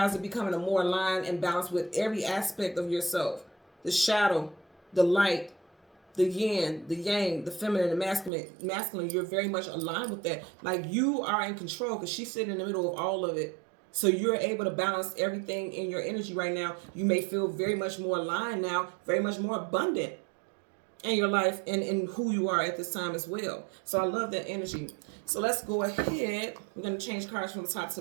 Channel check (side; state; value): left; drops out; at 8.3 s